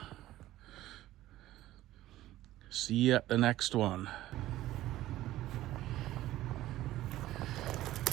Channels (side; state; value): left; quieter; 15.0 dB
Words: See you at the next one.